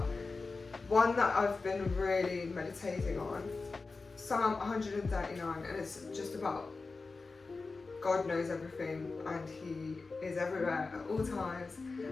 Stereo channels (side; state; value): right; quieter; 4.0 dB